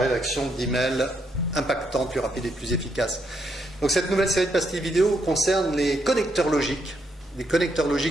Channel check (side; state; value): both; normal; correlation 0.77